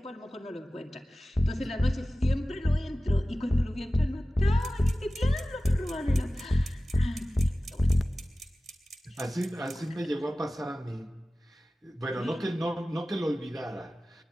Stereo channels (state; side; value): normal; both; correlation 0.97